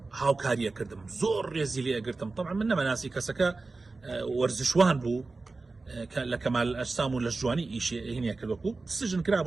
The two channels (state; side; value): quieter; left; 3.7 dB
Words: هاوکاریە کردم، زۆر ڕێزی لێ ئەگرتم. طبعا من نەمەناسی کەسەکە وەرزشوان بوو لە کەمال ئەجسام و لە جوانی ئیشی هینە کردوەکو سژن کرا